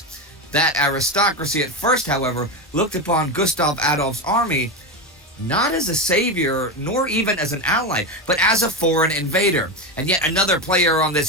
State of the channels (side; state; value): both; normal; correlation 0.15